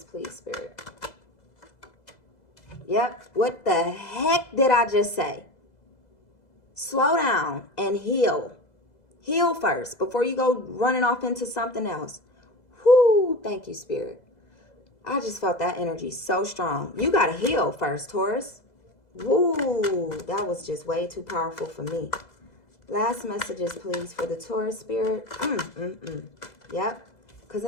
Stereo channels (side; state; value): right; late; 2.0 ms